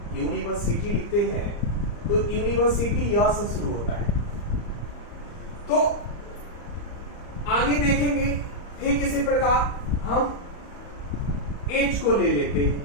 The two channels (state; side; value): late; right; 34 ms